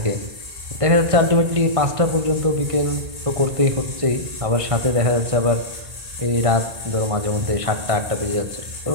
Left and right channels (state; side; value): late; left; 1.6 ms